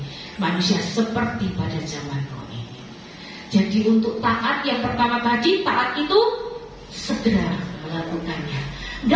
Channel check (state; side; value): identical; both; correlation 1.00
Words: manusia seperti pada zaman Nuh. Jadi untuk taat yang pertama tadi, taat itu segera melakukannya,